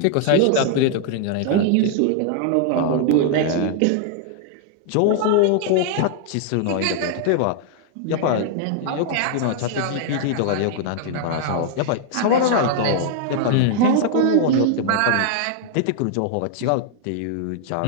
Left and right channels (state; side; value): different; both; correlation 0.00